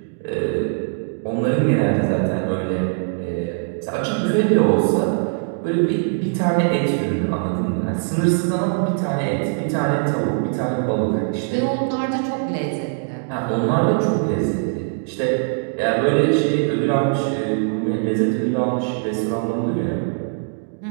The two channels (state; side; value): silent; left; digital silence